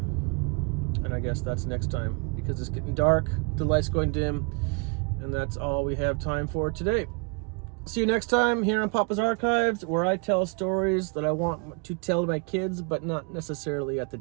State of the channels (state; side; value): quieter; left; 34.3 dB